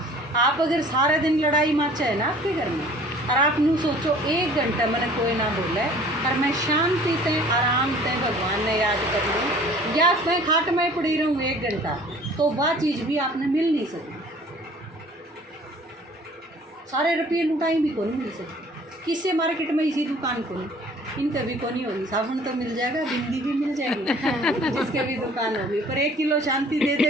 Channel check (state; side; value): normal; both; correlation 0.51